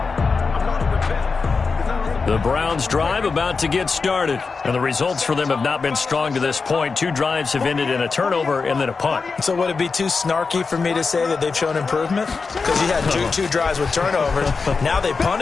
The Browns drive about to get started, and the results for them have not been strong to this point. 2 drives have ended in a turnover and then a punt. So would it be too snarky for me to say that they've shown improvement? Because you had two drives with turnovers. Now they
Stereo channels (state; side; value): quieter; right; 4.7 dB